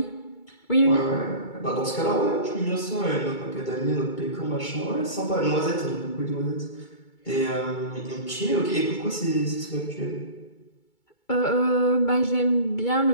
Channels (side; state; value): right; late; 2.3 ms